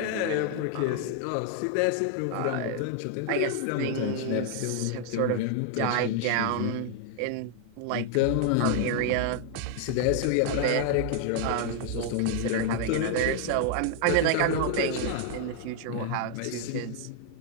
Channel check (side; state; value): both; different; correlation 0.00